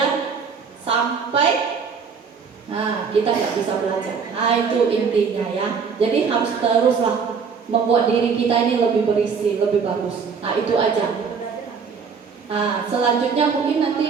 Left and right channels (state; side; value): quieter; left; 5.9 dB